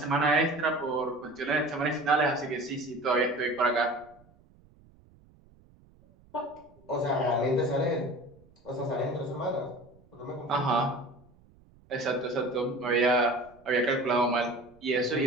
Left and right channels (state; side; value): noise; right; rumble, 28 dB below the sound